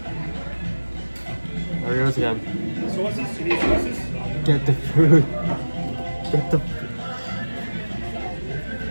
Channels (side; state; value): both; inverted; correlation -1.00